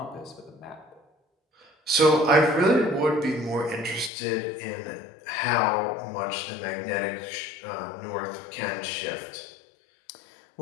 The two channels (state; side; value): drops out; right; at 4.1 s